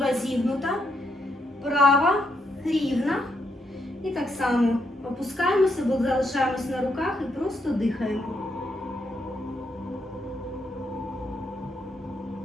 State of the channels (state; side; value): normal; both; correlation 0.78